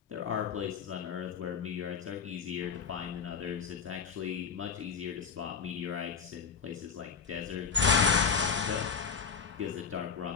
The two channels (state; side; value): quieter; right; 6.2 dB